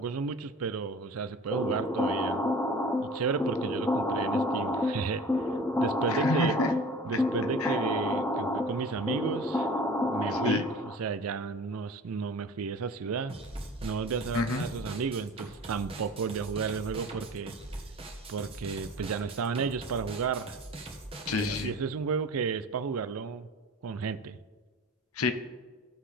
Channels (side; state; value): both; normal; correlation 0.41